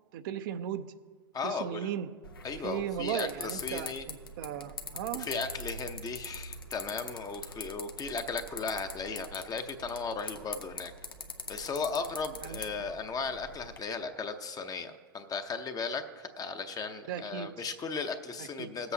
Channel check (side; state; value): both; normal; correlation 0.17